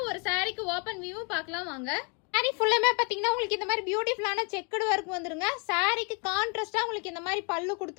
ஒரு சாரிக்கு ஓபன் வியூ பார்க்கலாம் வாங்க. சாரி ஃபுல்லுமே பார்த்தீங்கன்னா உங்களுக்கு இந்த மாதிரி பியூட்டிஃபுல்லான செக்குடு ஒர்க் வந்துருங்க. சாரிக்கு கான்ட்ராஸ்டாக உங்களுக்கு இந்த மாதிரி பல்லு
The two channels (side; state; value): right; quieter; 33.8 dB